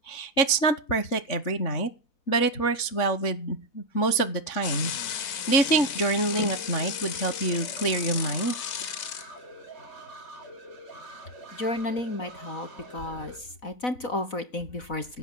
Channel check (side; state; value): right; late; 3.6 ms